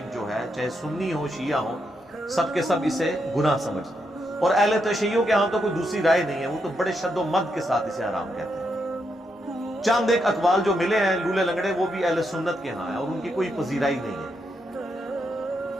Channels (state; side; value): normal; both; correlation 0.81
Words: جو ہے، چاہے سنی ہو شیعہ ہو، سب کے سب اسے گناہ سمجھتے ہیں، اور اہل تشیعوں کے ہاں تو کوئی دوسری رائے نہیں ہے، وہ تو بڑے شد و مد کے ساتھ اسے حرام کہتے ہیں۔ چند ایک اقوال جو ملے ہیں لولے لنگڑے، وہ بھی اہل سنت کے ہاں ہیں اور ان کی کوئی پذیرائی نہیں ہے۔